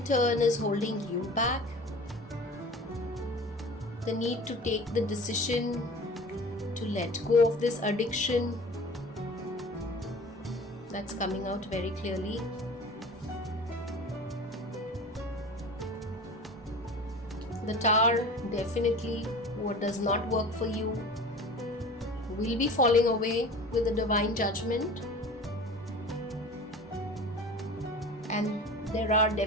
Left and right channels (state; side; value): normal; both; correlation 0.39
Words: turn is holding you back. The need to take the decision to let go of this addiction, that's coming out very clearly. The Tower, definitely what does not work for you will be falling away with the divine judgment. And there are